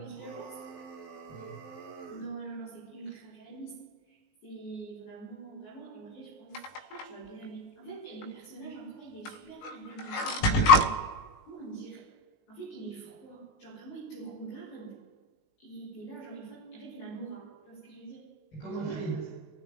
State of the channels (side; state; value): right; late; 19 ms